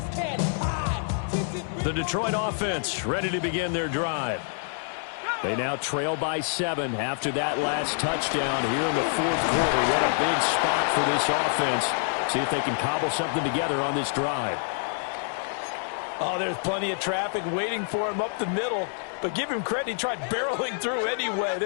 The Detroit offense ready to begin their drive. They now trail by 7 after that last touchdown here in the 4th quarter. What a big spot for this offense. See if they can cobble something together on this drive. Oh, there's plenty of traffic waiting for him up the middle. But give him credit, he tried barreling through anyway.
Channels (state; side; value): silent; right; digital silence